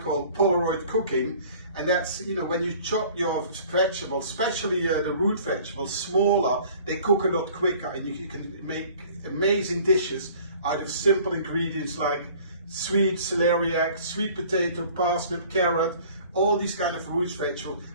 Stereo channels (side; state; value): both; inverted; correlation -0.50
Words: Polaroid cooking, and that's, you know, when you chop your vegetables, especially the root vegetables, smaller, they cook a lot quicker, and you can make amazing dishes out of simple ingredients like sweet celeriac, sweet potato, parsnip, carrot, all these kind of root vegetables.